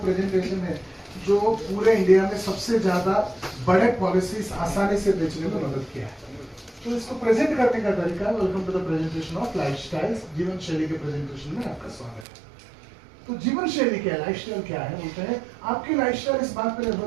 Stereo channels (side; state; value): left; drops out; at 12.2 s